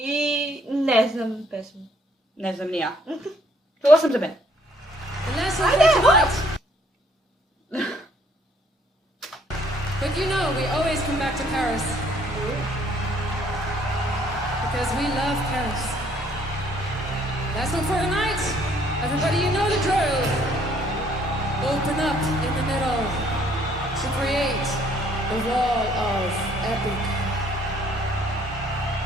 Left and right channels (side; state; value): both; normal; correlation 0.63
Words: ne znam pesmu. Ne znam ni ja. Čula sam za mene. Ajde, what? But you know, we always come back to Paris. Because we love Paris. Last one for tonight. Everybody, you know the drill. Open up in the middle to create the wall of epic.